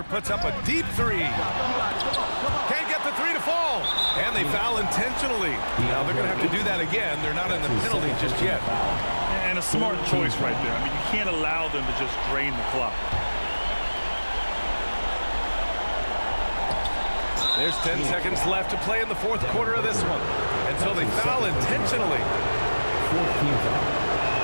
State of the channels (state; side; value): inverted; both; correlation -1.00